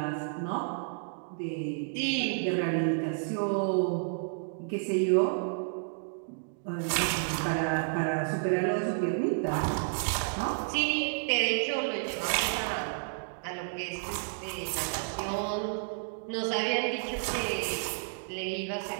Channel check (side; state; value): left; silent; digital silence